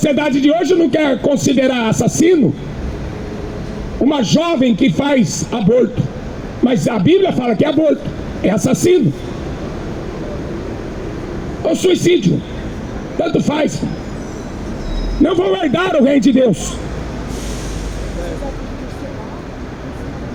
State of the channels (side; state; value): both; identical; correlation 1.00